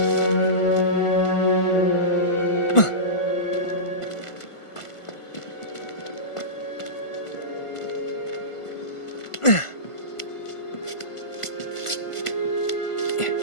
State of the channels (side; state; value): right; late; 1.5 ms